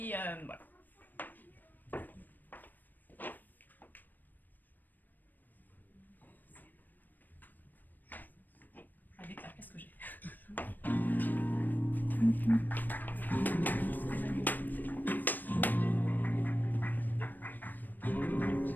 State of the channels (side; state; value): right; late; 0.089 ms